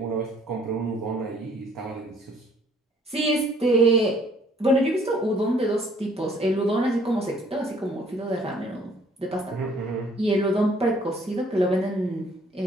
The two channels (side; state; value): both; normal; correlation 0.60